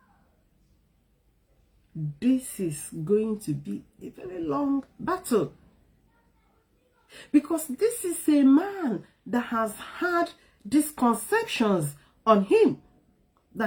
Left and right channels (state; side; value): identical; both; correlation 1.00